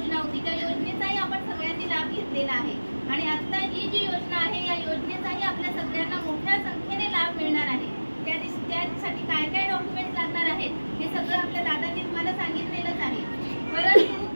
होती, त्या योजनेचाही आपण सगळ्यांनी लाभ घेतलेला आहे, आणि आता ही जी योजना आहे या योजनेचाही आपल्या सगळ्यांना मोठ्या संख्येने लाभ मिळणार आहे। त्यासाठी काय काय डॉक्युमेंट्स लागणार आहेत हे सगळं आपल्या दादांनी तुम्हाला सांगितलेलंच आहे।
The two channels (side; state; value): both; inverted; correlation -1.00